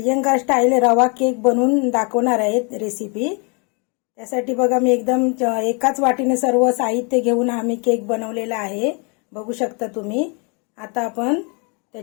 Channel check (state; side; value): quieter; right; 33.9 dB